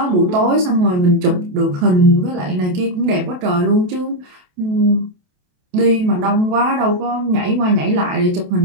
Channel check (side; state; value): left; late; 28 ms